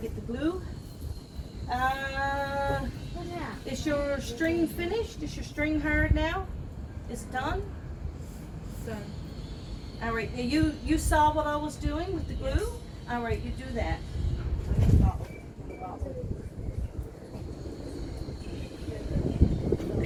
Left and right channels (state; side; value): identical; both; correlation 1.00